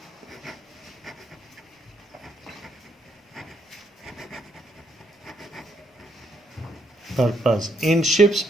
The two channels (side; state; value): both; normal; correlation 0.74